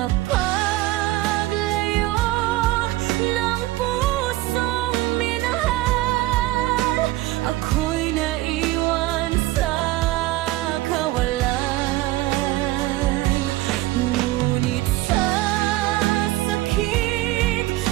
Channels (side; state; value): left; quieter; 17.5 dB